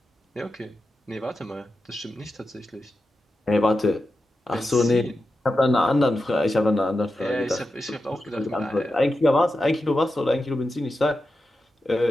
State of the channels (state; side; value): normal; both; correlation 0.90